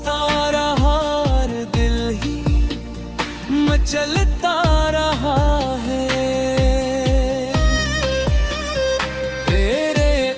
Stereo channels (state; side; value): identical; both; correlation 1.00